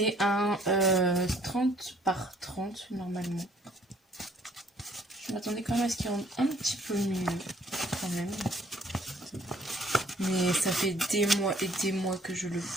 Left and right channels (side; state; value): both; normal; correlation 0.60